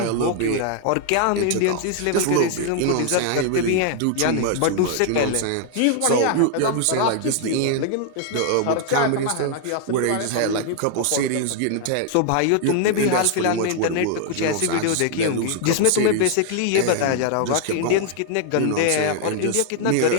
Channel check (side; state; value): both; different; correlation 0.00